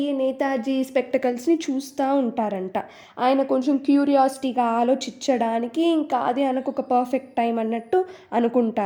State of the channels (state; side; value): identical; both; correlation 1.00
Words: నేతాజీ స్పెక్టకల్స్ని చూస్తూ ఉంటారంట. ఆయన కొంచెం క్యూరియాసిటీగా ఆలోచించడానికి ఇంకా అది ఆయనకు ఒక పర్ఫెక్ట్ టైం అన్నట్టు